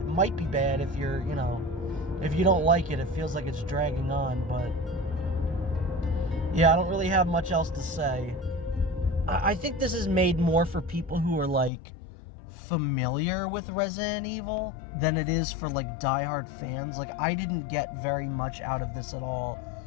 might be bad if you're, if you don't like it, it feels like it's dragging on, but yeah, I don't really have much else to say. I think this is made more for people who are, like, familiar with Resident Evil than it is for, like, diehard fans. Like, I didn't get very much out of this at all.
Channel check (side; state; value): right; drops out; at 11.7 s